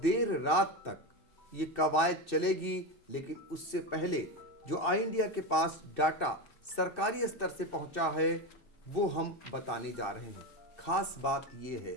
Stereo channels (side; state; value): right; late; 2.6 ms